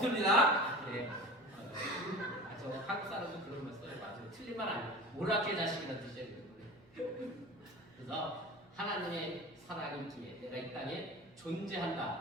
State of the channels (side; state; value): right; noise; hum, 29 dB below the sound